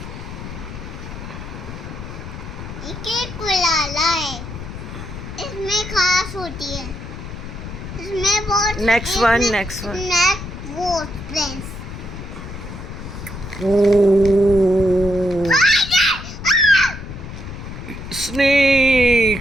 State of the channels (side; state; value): left; noise; rumble, 10 dB below the sound